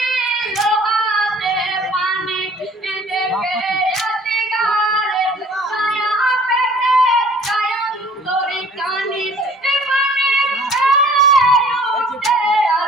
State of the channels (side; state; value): both; normal; correlation 0.52